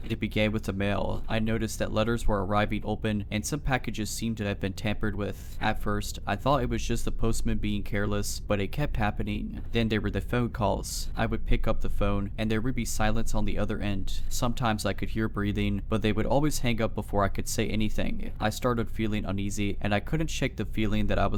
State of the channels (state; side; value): identical; both; correlation 1.00